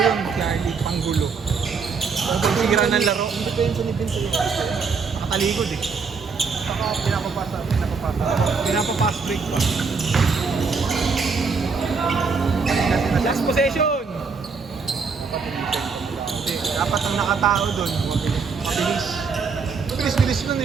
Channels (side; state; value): left; quieter; 5.1 dB